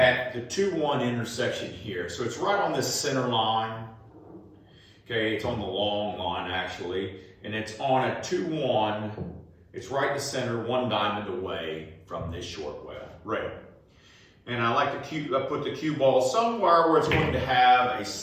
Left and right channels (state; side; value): identical; both; correlation 1.00